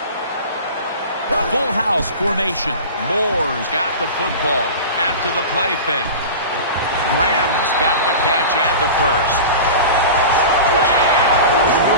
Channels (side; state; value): both; inverted; correlation -0.32